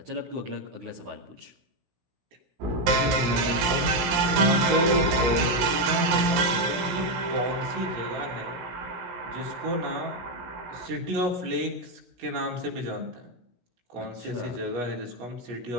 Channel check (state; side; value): late; left; 17 ms